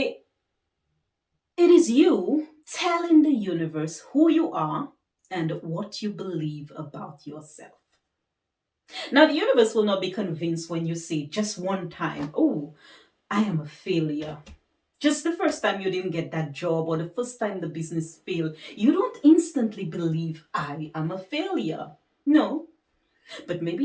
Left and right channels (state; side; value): identical; both; correlation 1.00